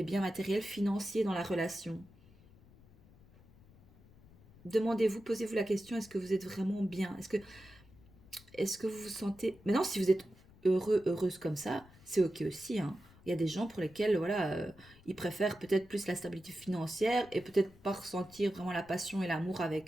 biens matériels, financiers dans la relation. Demandez-vous, posez-vous la question, est-ce que vous êtes vraiment bien? Est-ce que vous vous sentez... Maintenant, si vous êtes heureux, heureuse comme ça, c'est ok aussi, hein. Il y a des gens pour lesquels, voilà, ils préfèrent peut-être plus la stabilité financière et peut-être pas ressentir vraiment la passion et l'amour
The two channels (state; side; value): noise; left; rumble, 25 dB below the sound